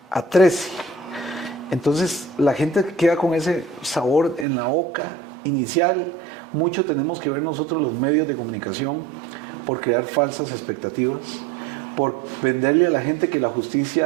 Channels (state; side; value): drops out; left; at 4.5 s